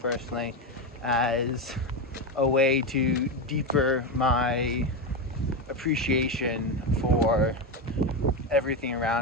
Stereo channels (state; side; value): normal; both; correlation 0.13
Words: personally as a way to deeper my appreciation for everything